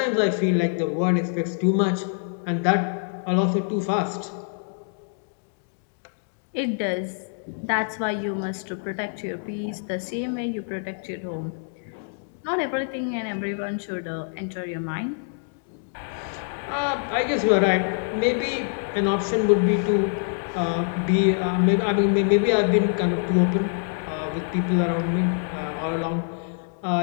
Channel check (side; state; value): right; silent; digital silence